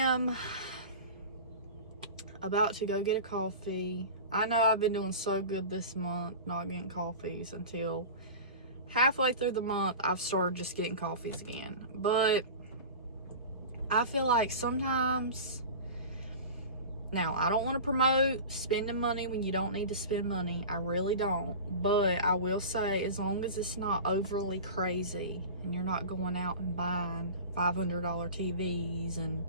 about to go get a coffee. I know I've been doing so good this month not getting coffees until halfway through the month I've started just getting coffees again. But I feel like sometimes, now I don't want to promote spending money when you don't need to spend money. I really don't. But I will say, as long as it's not overly crazy and you're not going out and buying $500 TVs and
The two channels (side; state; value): both; inverted; correlation -0.33